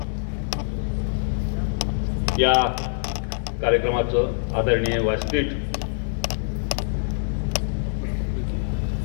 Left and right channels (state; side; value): silent; right; 62 dB below the other